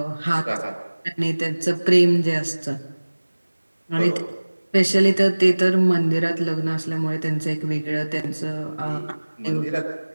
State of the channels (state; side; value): inverted; both; correlation -1.00